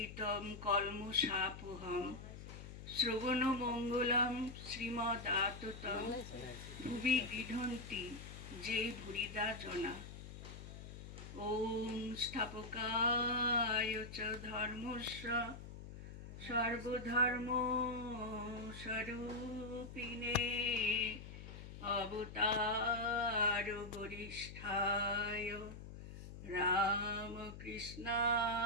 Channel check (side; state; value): left; noise; hum, 12 dB below the sound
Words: কলমশাপহম শ্রবণ মঙ্গলম শ্রীমদাততম ভুবি গৃহন্তি যে ভুরিদা জনা। ওম স্থাপকায় চ ধর্মস্য সর্বধর্ম স্বরূপিণে অবতার বরিষ্ঠায় রামকৃষ্ণায়